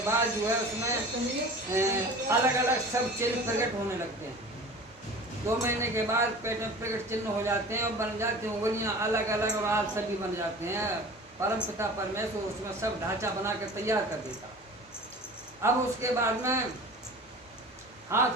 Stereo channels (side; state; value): both; normal; correlation 0.39